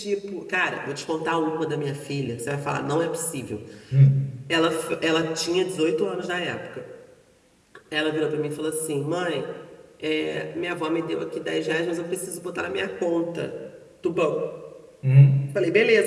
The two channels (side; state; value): both; identical; correlation 1.00